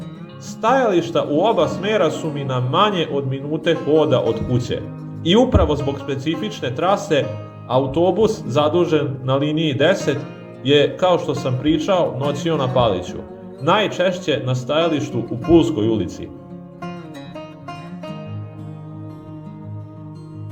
Stajališta u oba smera su mi na manje od minute hoda od kuće. I upravo zbog specifične trase, autobus zadužen na liniji 10 je, kao što sam pričao, noćio na Paliću. Najčešće na stajalištu u Pulskoj ulici.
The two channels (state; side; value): identical; both; correlation 1.00